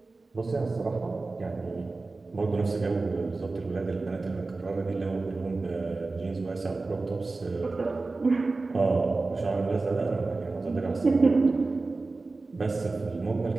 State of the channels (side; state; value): left; quieter; 3.6 dB